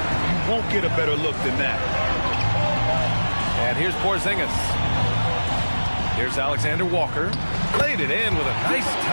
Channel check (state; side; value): inverted; both; correlation -1.00